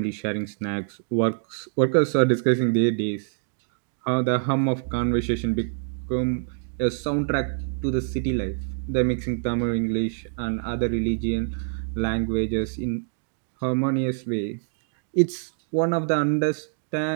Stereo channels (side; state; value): left; silent; digital silence